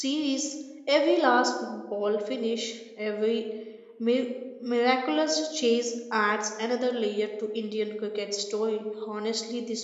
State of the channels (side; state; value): both; identical; correlation 1.00